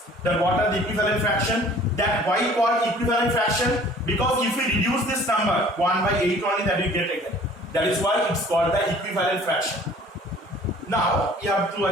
That what are the equivalent fraction? That why called equivalent fraction? Because if we reduce this number 1 by 8 only, that we get again. That is why it's called the equivalent fraction. Now you have to,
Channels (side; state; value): both; normal; correlation 0.51